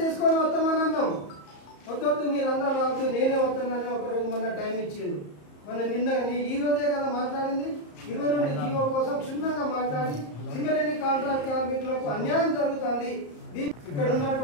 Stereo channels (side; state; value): right; late; 34 ms